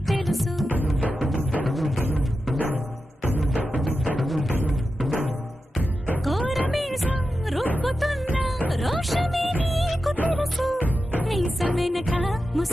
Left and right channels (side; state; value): both; normal; correlation 0.91